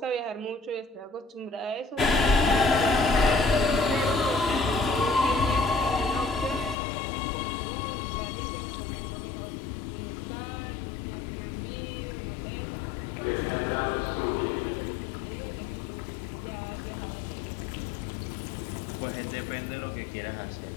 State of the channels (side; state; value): right; drops out; at 6.8 s